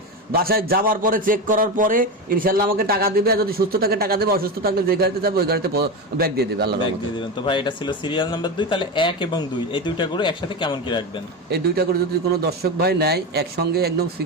বাসায় যাওয়ার পরে চেক করার পরে ইনশাআল্লাহ আমাকে টাকা দিবে। আর যদি সুস্থ থাকে টাকা দেবে, অসুস্থ থাকলে যে গাড়িতে যাবে ওই গাড়িতে ব্যাগ দিয়ে দেবে, আল্লাহর রহমতে। তো ভাই এটা ছিল সিরিয়াল নাম্বার 2। তাহলে 1 এবং 2 এই দুইটা গরু একসাথে কেমন কি রাখবেন? এই দুইটা করে যদি কোনো দর্শক ভাই নেয়, একসঙ্গে একদম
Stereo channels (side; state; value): both; normal; correlation 0.18